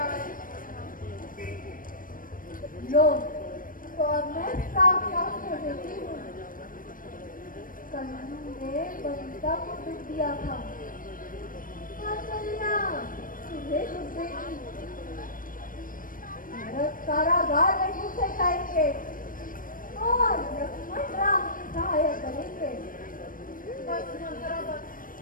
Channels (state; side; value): late; right; 0.40 ms